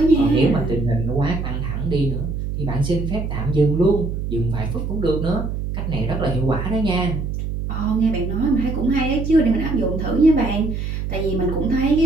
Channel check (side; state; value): right; noise; hum, 4 dB below the sound